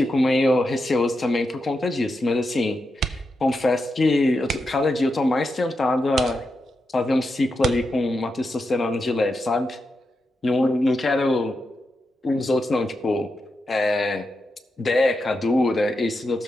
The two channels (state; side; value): normal; both; correlation 0.87